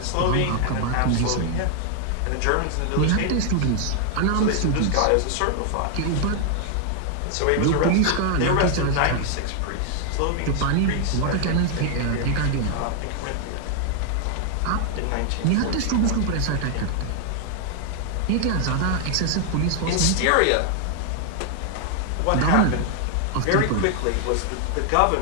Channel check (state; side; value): different; both; correlation 0.00